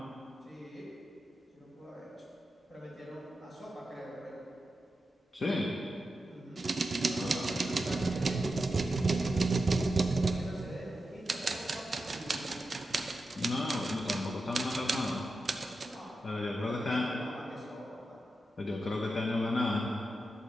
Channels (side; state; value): both; normal; correlation 0.89